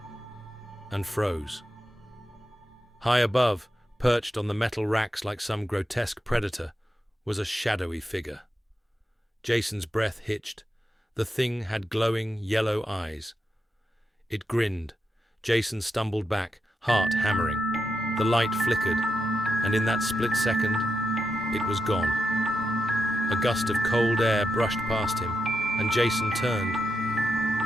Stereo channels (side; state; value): both; normal; correlation 0.86